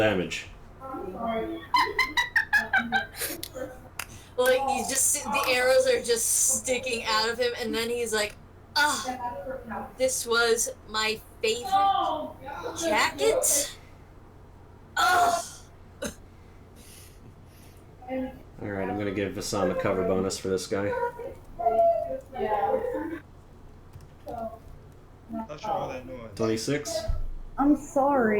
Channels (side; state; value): both; identical; correlation 1.00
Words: Like, you just see the arrows are just sticking out of him, and then he's like, ah, this was my favorite jacket? Ugh. Alright, I'm gonna give Vassam a cover bonus for this guy. Not sure all that noise. 26. I'm